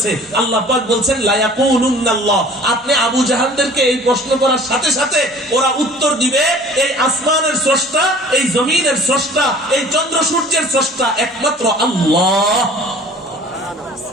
আল্লাহ পাক বলছেন, লায়াকুলুন্নাল্লাহ। আপনি আবু জাহেলদেরকে এই প্রশ্ন করার সাথে সাথে ওরা উত্তর দিবে, এই আসমানের স্রষ্টা, এই জমিনের স্রষ্টা, এই চন্দ্র সূর্যের স্রষ্টা একমাত্র আল্লাহ।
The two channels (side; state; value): both; normal; correlation 0.49